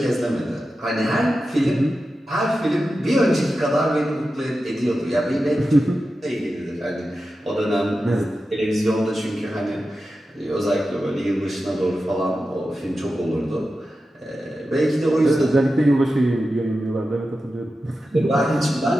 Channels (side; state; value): both; normal; correlation 0.92